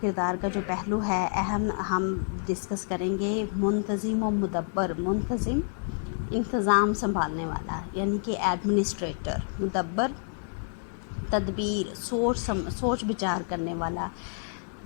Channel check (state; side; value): silent; right; 59 dB below the other